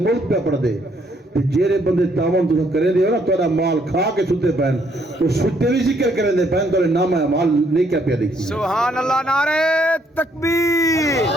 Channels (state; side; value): normal; both; correlation 0.69